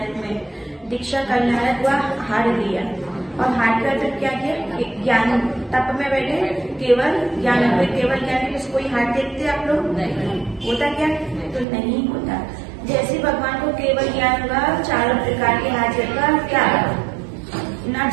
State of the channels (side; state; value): left; drops out; at 11.7 s